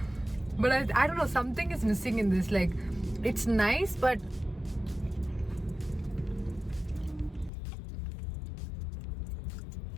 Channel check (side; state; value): right; drops out; at 7.5 s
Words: But I don't know, something is missing in this. Like, it's nice, but